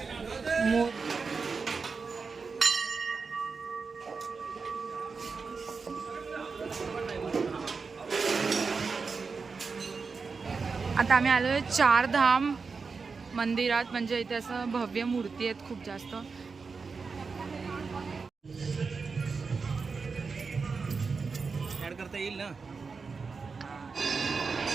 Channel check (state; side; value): quieter; left; 4.8 dB